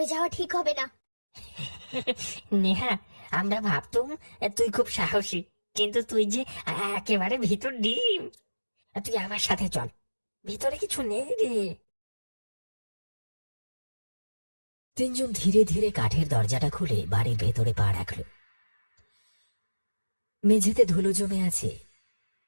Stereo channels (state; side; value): inverted; both; correlation -1.00